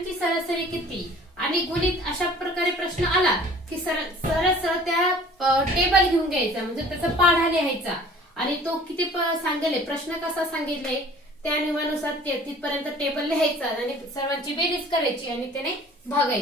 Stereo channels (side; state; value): both; normal; correlation 0.49